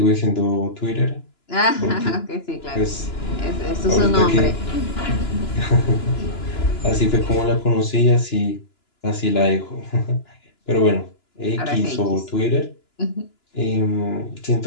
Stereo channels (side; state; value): right; late; 2.9 ms